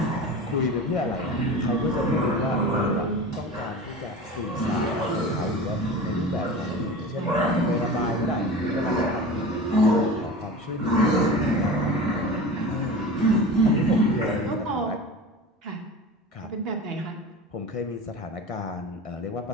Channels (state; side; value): normal; both; correlation 0.33